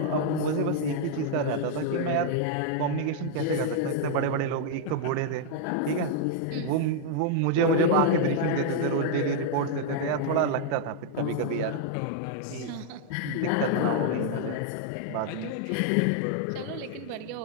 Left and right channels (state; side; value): different; both; correlation -0.01